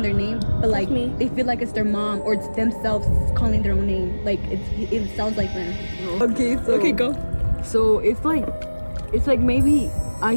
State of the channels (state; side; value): inverted; both; correlation -1.00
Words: their name, but like me. they feel like it's their mom or it's themselves calling their own name. Like it sounds like them. Okay, so Okay, go. So it's like maybe I